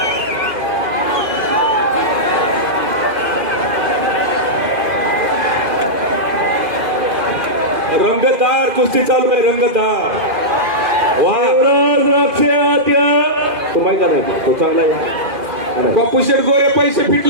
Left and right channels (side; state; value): left; late; 2.5 ms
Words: रंगतदार कुस्ती चालू आहे. रंगतदार. शिवराज रक्षे आत्या. तो माहिती नाही. तो चांगला आहे. बापू शेठ गोरे पैसे